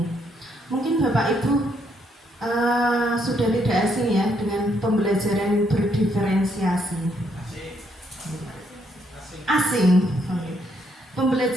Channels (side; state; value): both; normal; correlation 0.73